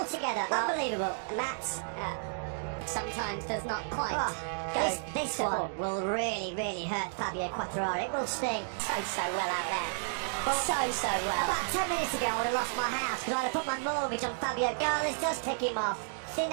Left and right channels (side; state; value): left; silent; digital silence